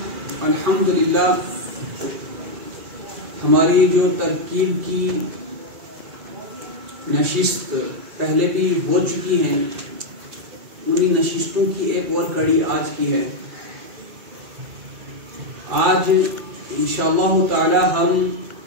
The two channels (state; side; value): late; left; 2.4 ms